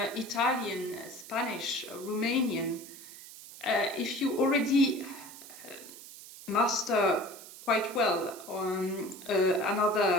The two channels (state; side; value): noise; right; hiss, 16 dB below the sound